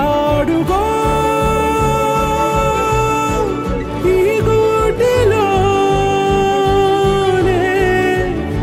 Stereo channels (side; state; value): both; identical; correlation 1.00